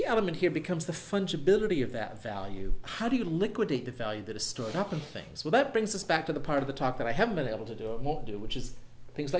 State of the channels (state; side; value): identical; both; correlation 1.00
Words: element here becomes the fungibility of that value. How do you liquidate the value that is stored up in things? Well, that brings us back to the part of the talk that I haven't been able to do and won't do, which is things